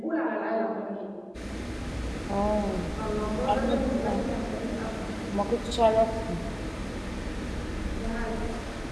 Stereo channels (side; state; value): both; identical; correlation 1.00